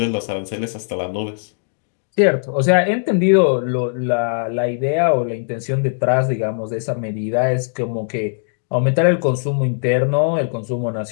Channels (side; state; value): right; silent; digital silence